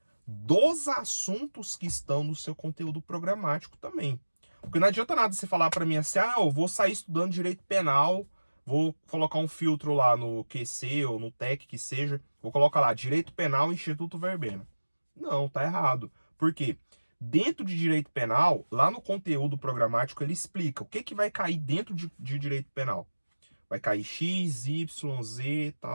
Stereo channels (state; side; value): inverted; both; correlation -1.00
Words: dos assuntos que estão no seu conteúdo programático também. Porque não adianta nada você falar para mim assim, ah, eu vou sair estudando direito penal, vou colocar um filtro lá no QC ou no TEC que seja, vou colocar lá, direito penal, Instituto Verbena. Não, tá errado. Por quê? Dentro de direito penal, lá no conteúdo programático, ele explica o que, que vai cair dentro de direito penal. Vai cair X, Y, Z,